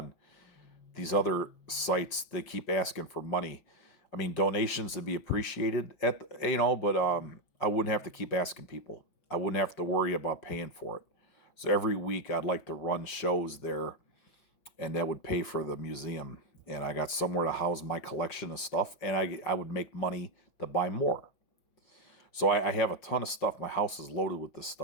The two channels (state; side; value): late; right; 5.5 ms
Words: these other sites. They keep asking for money. I mean, donations would be appreciated but I wouldn't have to keep asking people. I wouldn't have to worry about paying for it. So every week I'd like to run shows there, and that would pay for the museum. And I got somewhere to house my collection of stuff, and I would make money to buy more. So I have a ton of stuff. My house is loaded with this